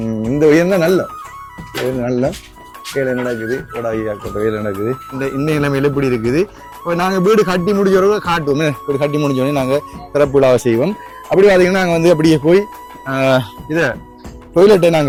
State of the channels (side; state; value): both; identical; correlation 1.00